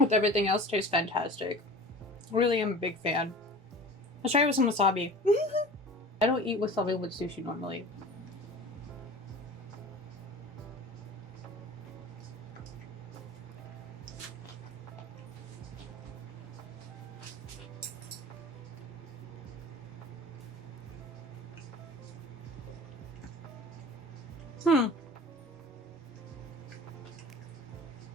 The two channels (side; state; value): both; normal; correlation 0.39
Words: everything else tastes fantastic. Really am a big fan. Let's try it with some wasabi. I don't eat wasabi with sushi normally.